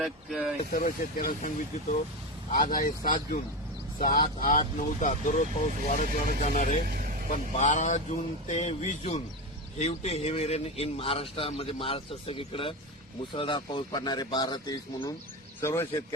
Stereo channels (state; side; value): normal; both; correlation 0.18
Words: सर्व शेतकऱ्यांना सांगू इच्छितो, आज आहे 7 जून. 7, 8, 9, 10 दररोज पाऊस वाढत जाणार आहे. पण 12 जून ते 20 जून हेवी रेन इन महाराष्ट्रामध्ये महाराष्ट्र सगळीकडे मुसळधार पाऊस पडणार आहे. 12 ते 20 म्हणून सर्व